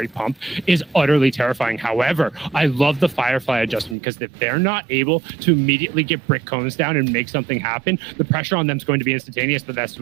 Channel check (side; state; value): left; drops out; at 4.0 s